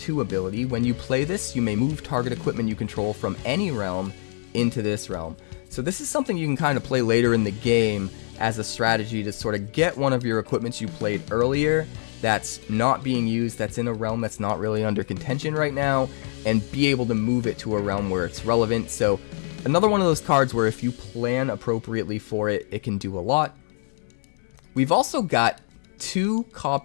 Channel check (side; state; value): right; silent; digital silence